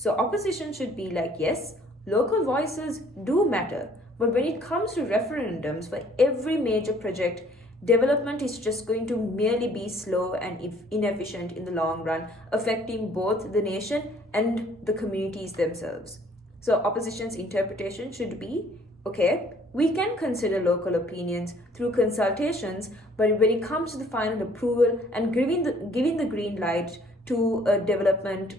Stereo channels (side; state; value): both; normal; correlation 0.59